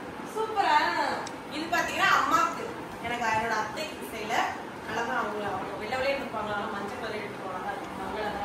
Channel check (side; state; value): both; identical; correlation 1.00